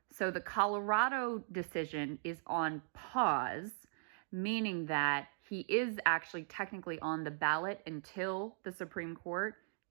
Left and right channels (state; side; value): silent; left; digital silence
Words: so the Colorado decision is on pause, meaning that he is actually technically on the ballot until the Supreme Court